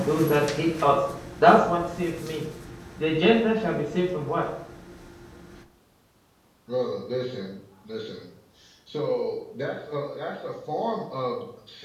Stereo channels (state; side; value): identical; both; correlation 1.00